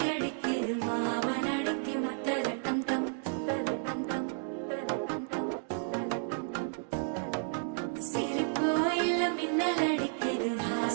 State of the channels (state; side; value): silent; left; digital silence